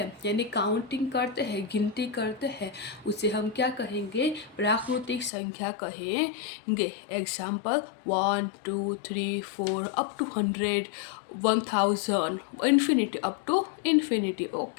यानी काउंटिंग करते हैं, गिनती करते हैं, उसे हम क्या कहेंगे, प्राकृतिक संख्या कहेंगे। Example 1, 2, 3, 4 up to 100, 1000, infinity, up to infinity.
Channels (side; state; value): right; drops out; at 5.3 s